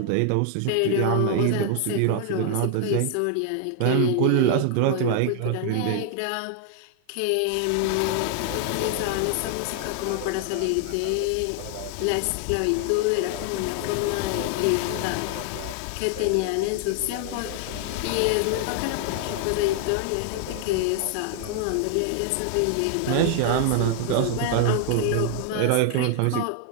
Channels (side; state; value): both; different; correlation 0.00